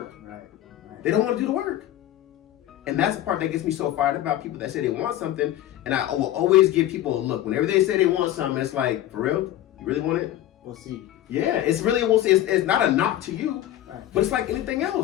Right. They don't want to do the work. And that's the part that gets me so fired about people that say they want something, and I will always give people a look. Whenever they say they want something, it's like, for real? You really want it? We'll see. Yeah, it's really a we'll see. It's not a knock to you, but it's like anything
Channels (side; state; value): right; quieter; 13.2 dB